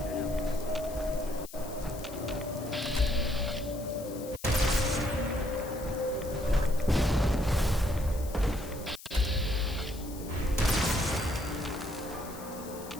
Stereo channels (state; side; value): noise; left; hiss, 16 dB below the sound